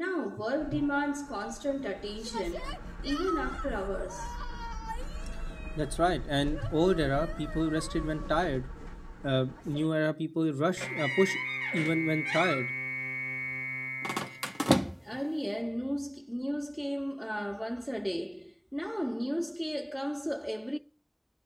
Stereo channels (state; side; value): identical; both; correlation 1.00